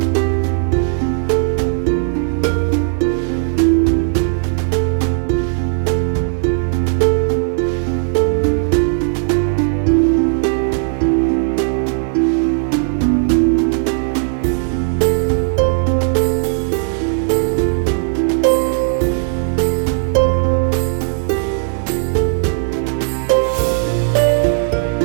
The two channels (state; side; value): silent; left; digital silence